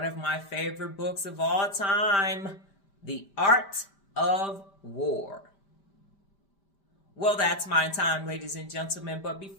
of my favorite books of all time, The Art of War. Well, that's my time, ladies and gentlemen. But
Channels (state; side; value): late; right; 5.1 ms